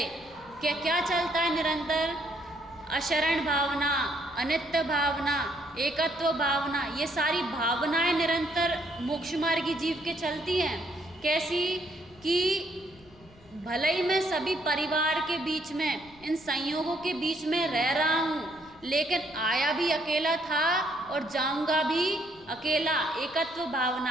क्या चलता है निरंतर, अशरण भावना, अनित्य भावना, एकत्व भावना, ये सारी भावनाएं निरंतर मोक्ष मार्गी जीव के चलती हैं। कैसी कि भले ही मैं सभी परिवार के बीच में, इन संयोगों के बीच में रह रहा हूँ, लेकिन आया भी अकेला था और जाऊंगा भी अकेला, एकत्व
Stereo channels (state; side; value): noise; left; rumble, 25 dB below the sound